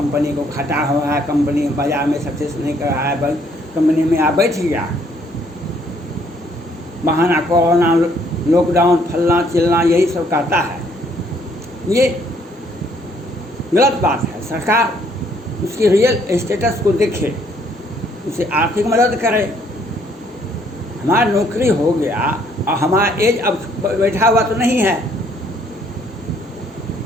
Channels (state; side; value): normal; both; correlation 0.66